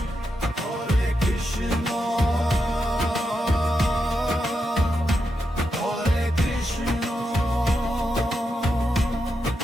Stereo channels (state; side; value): normal; both; correlation 0.85